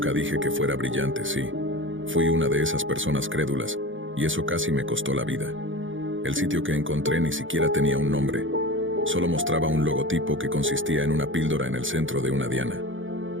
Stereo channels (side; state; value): left; late; 0.57 ms